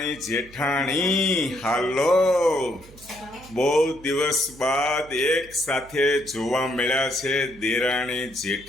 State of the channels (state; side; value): noise; right; hum, 22 dB below the sound